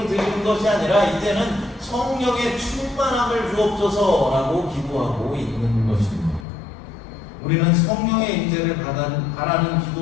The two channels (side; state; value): right; drops out; at 6.5 s